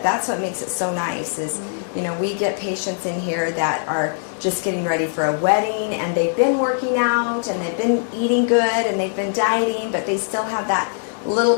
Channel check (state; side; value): silent; right; digital silence